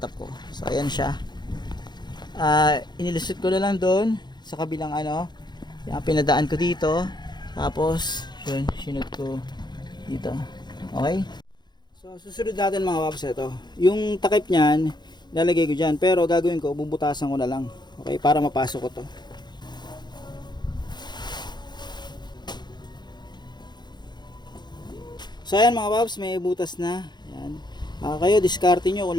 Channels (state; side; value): late; right; 0.21 ms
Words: ko. So ayan siya. Inilusot ko na lang doon sa kabilang yung pinadaan ko dito. Tapos yun, sinod ko dito. Okay? So susunod natin mga paps ito. Yung takip niyan, lalagay ko dyan. Pero gagawin ko, bubutasan ko na lang. Okay? Para mapasok ko to. So ayan mga paps, may butas na. Ayan. Kayo diskarte nyo kung